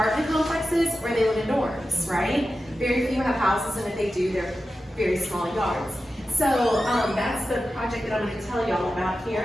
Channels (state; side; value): normal; both; correlation 0.92